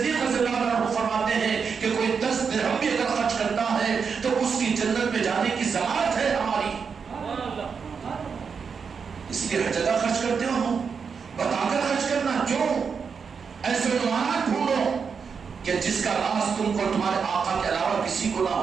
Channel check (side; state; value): left; quieter; 5.9 dB